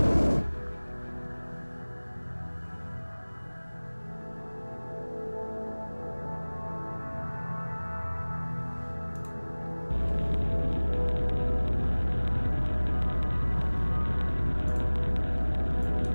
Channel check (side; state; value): both; inverted; correlation -1.00